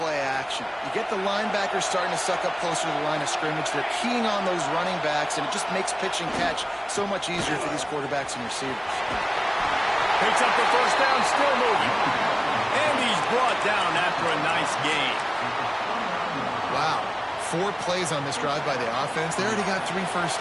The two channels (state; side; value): identical; both; correlation 1.00